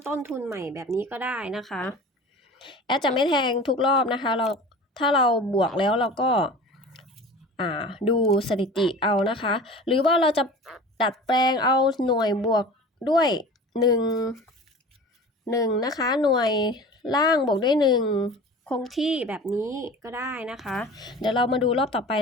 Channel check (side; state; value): both; normal; correlation 0.38